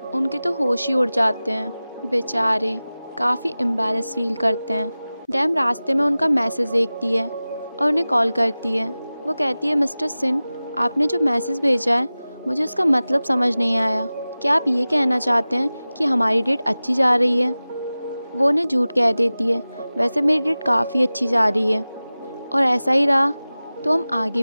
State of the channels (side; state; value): both; inverted; correlation -0.97